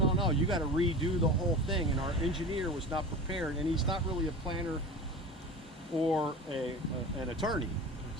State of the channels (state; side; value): normal; both; correlation 0.32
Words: you got to redo the whole thing, and our engineer was not prepared, and he's not really a planner or an attorney.